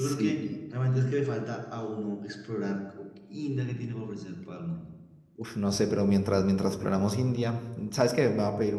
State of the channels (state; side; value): identical; both; correlation 1.00